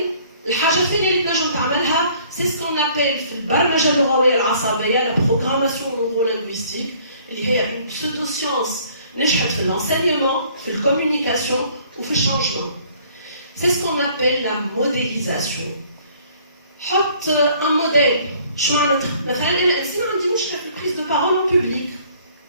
الحاجه الثانيه اللي تنجم تعملها سي سكون ابل في البرمجه اللغويه العصبيه لا بروغراماسيون نورو لينغويستيك اللي هي اون بسودو سيونس نجحت في الانسينيمون في الكومونيكاسيون وفي الشانجمون changement. C'est ce qu'on appelle la modélisation. حط un modèle. شو معناتها؟ مثلا أنا إنسان عندي مشكلة في البريز دو بارول en public.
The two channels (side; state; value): both; inverted; correlation -0.58